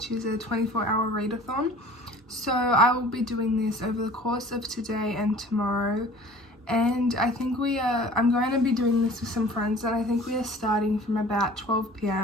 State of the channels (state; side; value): normal; both; correlation 0.46